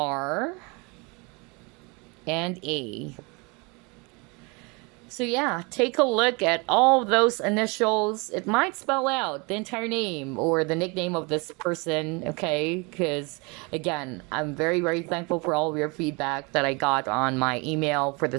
and A. So yeah, take a look at all of those initials. It might spell out the entire name or the nickname of this person, okay? Because, again, I'm very, very thankful for all of your feedback that I got on my email, for the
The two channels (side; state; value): left; quieter; 29.2 dB